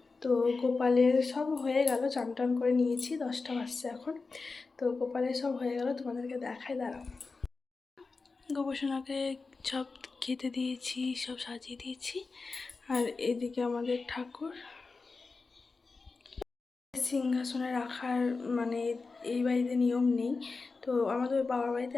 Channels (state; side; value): quieter; right; 4.1 dB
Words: তো গোপালের সব হয়ে গেল, চান টান করে নিয়েছি, 10টা বাজছে এখন। তো গোপালের সব হয়ে গেল, তোমাদেরকে দেখাই, দাঁড়াও। গোপালকে সব খেতে দিয়েছি, সব সাজিয়ে দিয়েছি। আর এদিকে আমাদের ঠাকুর সিংহাসনে রাখার, মানে এই বাড়িতে নিয়ম নেই, তো আমাদের বাবার বাড়িতে